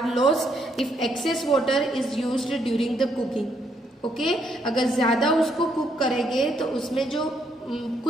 lost if excess water is used during the cooking. Okay, अगर ज्यादा उसको कुक करेंगे तो उसमें जो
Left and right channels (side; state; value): both; normal; correlation 0.73